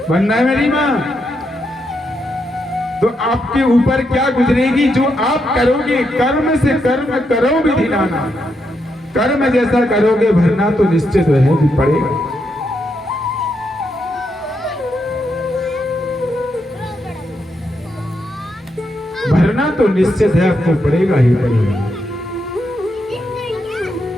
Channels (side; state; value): both; normal; correlation 0.81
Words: है मेरी माँ। तो आपके ऊपर क्या गुजरेगी जो आप करोगे, कर्म से कर्म करो भी धिनाना, कर्म जैसा करोगे भरना तो निश्चित रहे भी पड़ेगा। भरना तो निश्चित है, आपको पड़ेगा ही पड़ेगा।